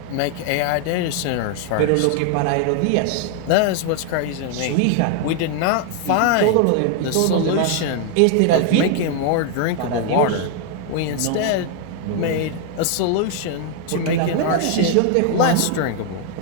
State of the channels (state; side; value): different; both; correlation 0.00